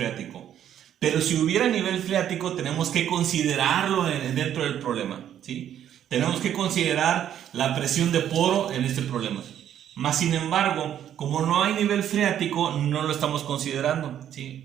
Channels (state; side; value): quieter; left; 10.4 dB